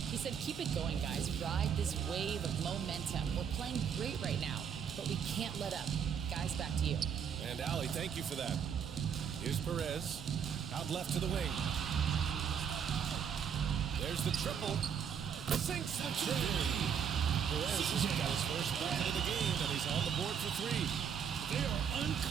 He said, keep it going, guys. Ride this wave of momentum. We're playing great right now, but we can't let up. Guys, back to you. And Allie, thank you for that. Here's Perez. Out left to the wing. There's the triple. Sinks the three. Perez has got his first bucket of the game, and he's on the board for three. They are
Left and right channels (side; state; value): left; quieter; 7.6 dB